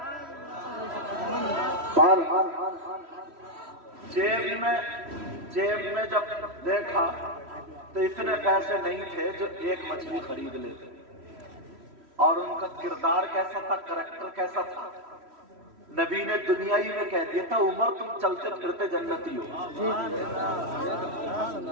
جیب میں جب دیکھا تو اتنے پیسے نہیں تھے جو ایک مچھلی خرید لیتے، اور ان کا کردار کیسا تھا، کریکٹر کیسا تھا، نبی نے دنیا ہی میں کہہ دیا تھا عمر تم چلتے پھرتے جنتی ہو۔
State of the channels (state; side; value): late; left; 3.1 ms